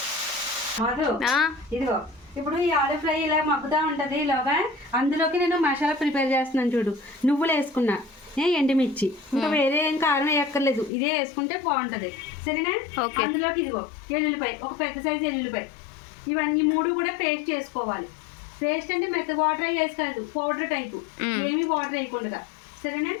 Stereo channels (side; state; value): right; drops out; at 10.9 s